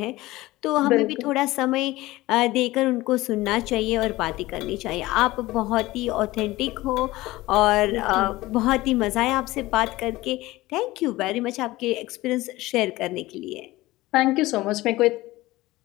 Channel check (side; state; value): right; quieter; 18.6 dB